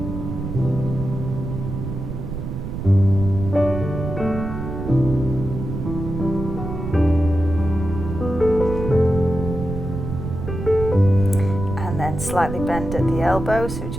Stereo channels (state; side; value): noise; right; rumble, 6 dB below the sound